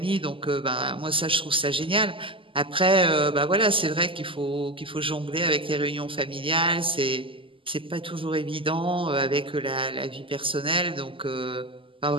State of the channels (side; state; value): left; late; 0.25 ms